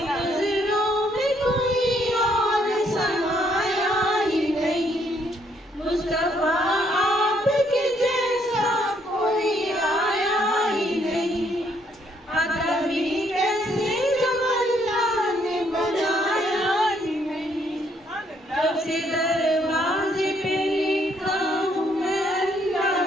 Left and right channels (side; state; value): both; normal; correlation 0.70